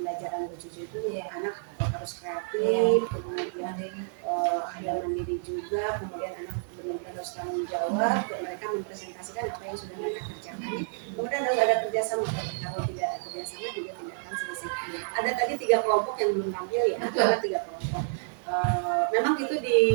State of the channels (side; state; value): left; silent; digital silence